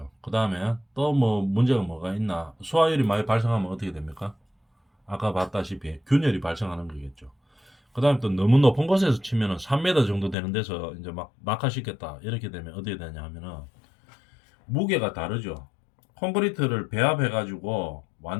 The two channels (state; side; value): drops out; right; at 10.4 s